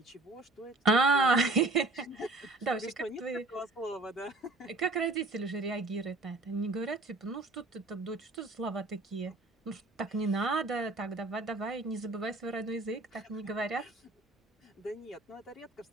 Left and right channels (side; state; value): left; quieter; 3.0 dB